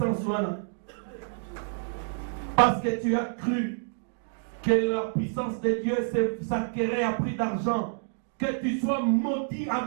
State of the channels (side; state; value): left; silent; digital silence